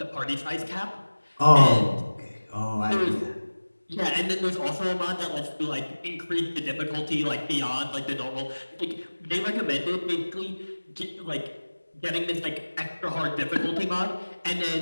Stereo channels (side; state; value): both; inverted; correlation -1.00